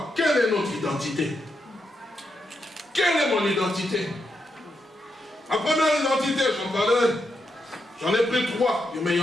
quelle est notre identité? Quelle est mon identité? Ma première identité, j'en ai pris 3, mais il y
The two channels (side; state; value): both; normal; correlation 0.83